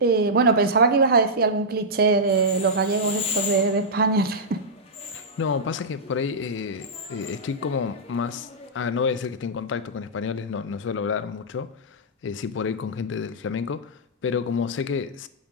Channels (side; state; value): both; normal; correlation -0.10